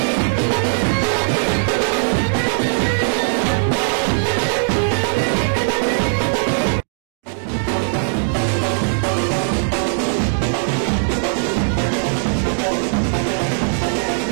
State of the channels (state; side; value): silent; left; digital silence